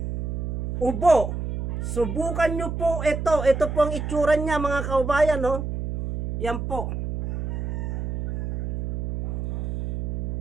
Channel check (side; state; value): right; noise; hum, 4 dB below the sound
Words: ubo, subukan nyo po ito. Ito po ang itsura niya mga kaubayan, no? Yan po.